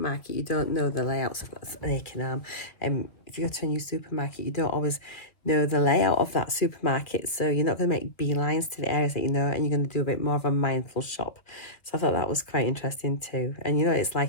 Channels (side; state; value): right; late; 2.2 ms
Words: you don't know the layouts. I've got an aching arm. If you go to a new supermarket, you don't always know the layout of that supermarket, so you're not going to make beelines to the areas that you know, and you're going to do a bit more of a mindful shop. So I thought that was quite interesting too. And you know, it's